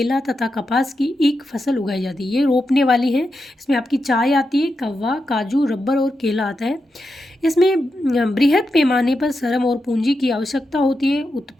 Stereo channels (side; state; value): both; normal; correlation 0.87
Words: तथा कपास की एक फसल उगाई जाती है। ये रोपने वाली है। इसमें आपकी चाय आती है, कव्वा, काजू, रबर और केला आता है। इसमें बृहद पैमाने पर श्रम और पूंजी की आवश्यकता होती है।